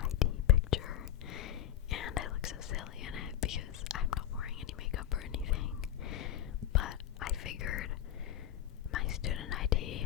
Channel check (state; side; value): quieter; right; 12.0 dB